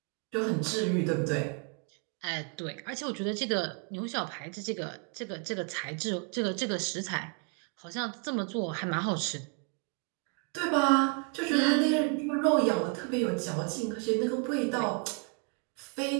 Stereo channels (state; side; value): quieter; left; 37.6 dB